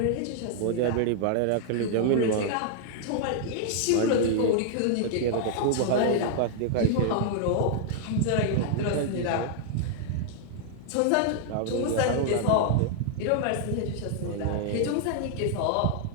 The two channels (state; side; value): different; both; correlation -0.01